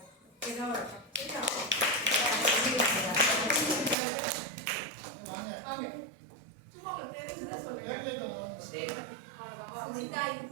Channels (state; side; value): drops out; left; at 4.0 s